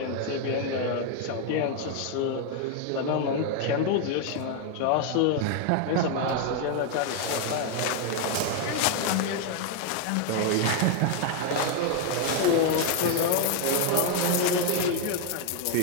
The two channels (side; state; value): both; different; correlation 0.01